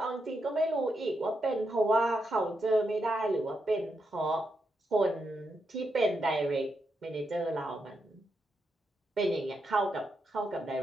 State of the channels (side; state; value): both; normal; correlation 0.83